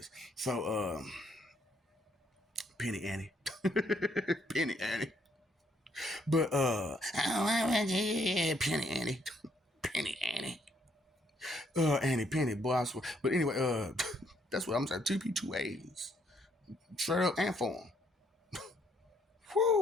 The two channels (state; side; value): normal; both; correlation 0.70